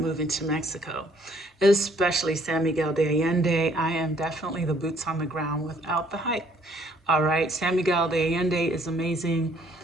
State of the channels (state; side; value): normal; both; correlation 0.63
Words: to Mexico, especially San Miguel de Allende. I am definitely the boots on the ground without the hype. All right, San Miguel de Allende is amazing.